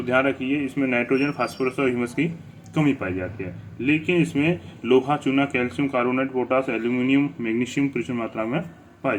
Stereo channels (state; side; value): identical; both; correlation 1.00